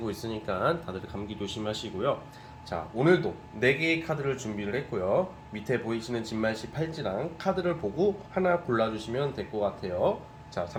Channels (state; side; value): identical; both; correlation 1.00